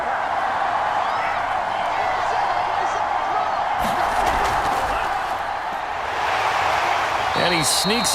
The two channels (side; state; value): both; identical; correlation 1.00